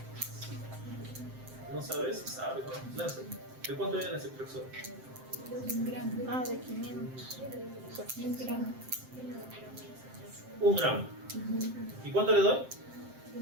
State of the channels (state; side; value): late; left; 7.7 ms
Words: ¿No sabes? Sabes, ¿no? Lánzate. ¿De cuánto viene ese Ceftrexol? 1 gramo. De 500. 1 gramo. 1 gramo. ¿Y cuánto le doy?